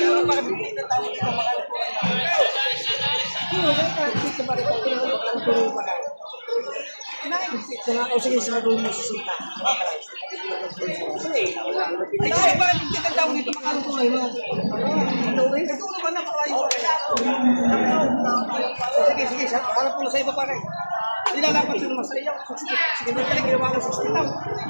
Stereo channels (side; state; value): both; inverted; correlation -1.00